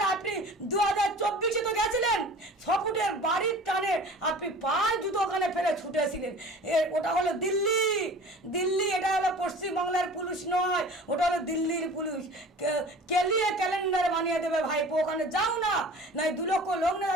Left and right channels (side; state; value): both; normal; correlation 0.42